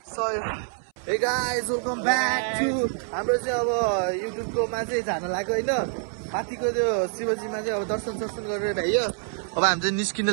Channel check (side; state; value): left; silent; 61 dB below the other